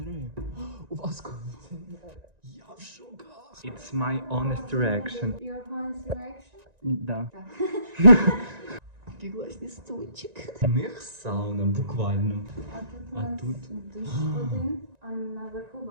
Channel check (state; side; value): late; left; 1.9 ms